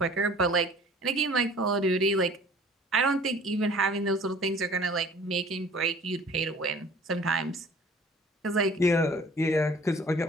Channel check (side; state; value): both; normal; correlation 0.50